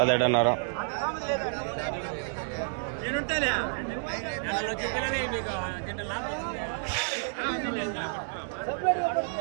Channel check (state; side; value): silent; left; digital silence